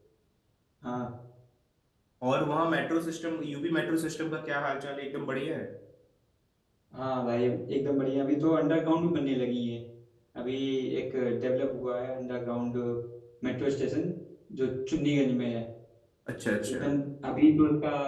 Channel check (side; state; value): both; identical; correlation 1.00